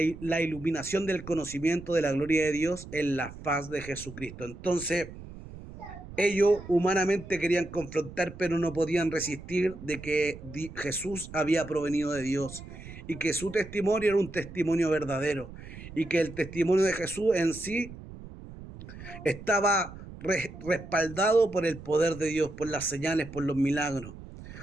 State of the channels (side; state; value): right; noise; rumble, 14 dB below the sound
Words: la iluminación del conocimiento de la gloria de Dios en la faz de Jesucristo. Entonces, ellos humanamente querían confrontar, pero no podían resistir de que Jesús había provenido de Dios y que su testimonio era un testimonio verdadero y que el testimonio de Jesús en sí estaba respaldado por el poder de Dios, por las señales, por los milagros.